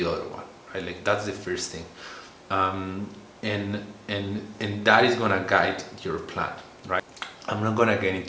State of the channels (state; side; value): identical; both; correlation 1.00